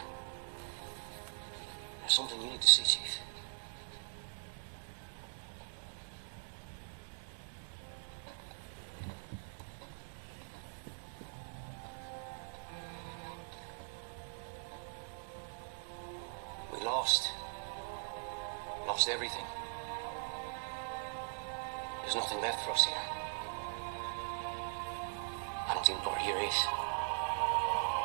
There's something you need to see, Chief. We lost. Lost everything. There's nothing left for us here. I don't think what here is.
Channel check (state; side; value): silent; left; digital silence